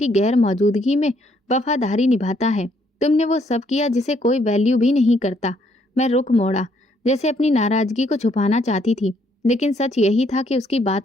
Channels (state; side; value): normal; both; correlation 0.69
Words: गैर मौजूदगी में वफादारी निभाता है। तुमने वो सब किया जिसे कोई वैल्यू भी नहीं करता। मैं रुख मोड़ा, जैसे अपनी नाराजगी को छुपाना चाहती थी, लेकिन सच यही था कि उसकी